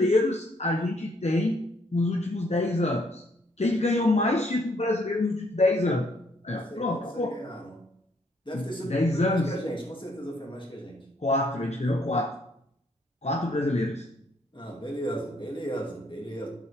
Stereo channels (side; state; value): both; normal; correlation 0.68